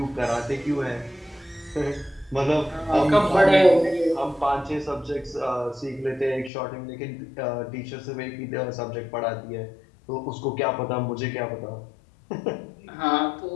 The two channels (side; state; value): right; drops out; at 6.5 s